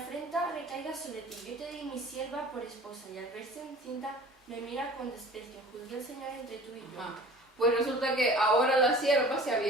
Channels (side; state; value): both; normal; correlation 0.44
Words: recaiga sobre ti, yo te di mi sierva por esposa, y al verse encinta me mira con desprecio. Juzgue el Señor entre tú y yo. Ajá. Pues resulta que ahora la sierva se